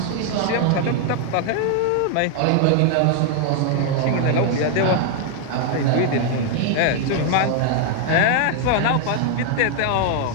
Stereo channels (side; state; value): both; different; correlation 0.00